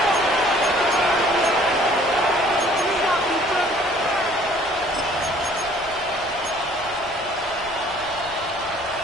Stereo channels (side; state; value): right; noise; rumble, 22 dB below the sound